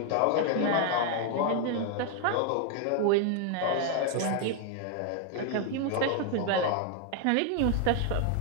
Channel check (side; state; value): both; different; correlation 0.01